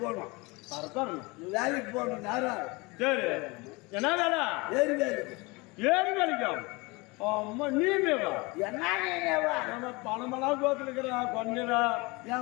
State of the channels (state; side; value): quieter; right; 25.5 dB